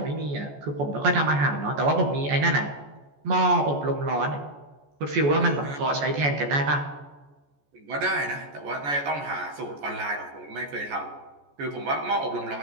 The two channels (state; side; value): late; left; 14 ms